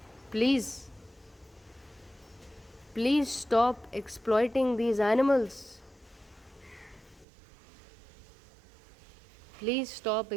Please stop exploiting these animals. Please stop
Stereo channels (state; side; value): drops out; left; at 7.2 s